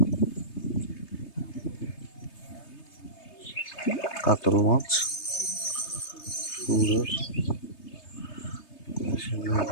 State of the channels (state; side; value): late; right; 3.3 ms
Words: কাতল মাছ সুন্দর,